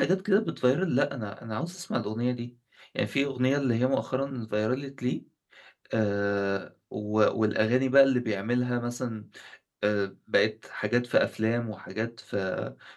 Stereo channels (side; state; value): both; identical; correlation 1.00